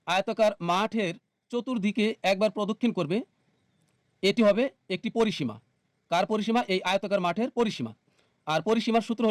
আয়তাকার মাঠের চতুর্দিকে একবার প্রদক্ষিণ করবে, এটি হবে একটি পরিসীমা। কার পরিসীমা? এই আয়তাকার মাঠের পরিসীমা। আর পরিসীমার সূত্র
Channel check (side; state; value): both; identical; correlation 1.00